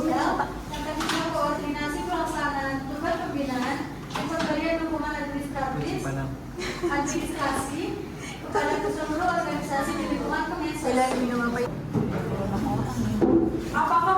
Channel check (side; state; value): both; identical; correlation 1.00